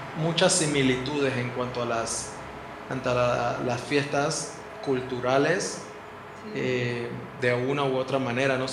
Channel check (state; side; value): identical; both; correlation 1.00